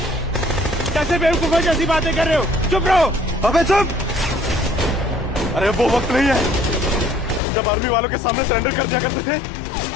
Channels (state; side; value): drops out; right; at 7.4 s